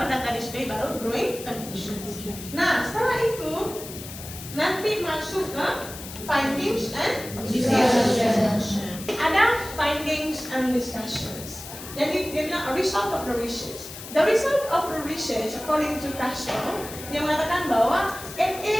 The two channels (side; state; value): left; noise; hiss, 12 dB below the sound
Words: data display, baru drawing conclusions. Nah, setelah itu nanti masuk ke findings and discussions. Ada findings and discussions. Jadi dia bilang a result of the research. The result of the research, according to Castro, dia mengatakan bahwa it